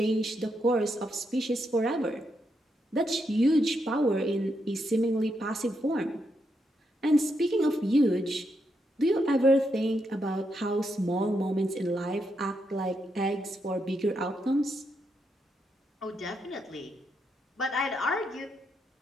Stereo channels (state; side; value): normal; both; correlation 0.81